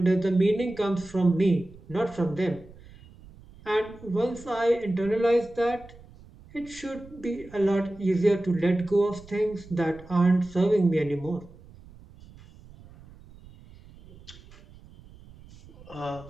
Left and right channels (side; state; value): right; noise; rumble, 21 dB below the sound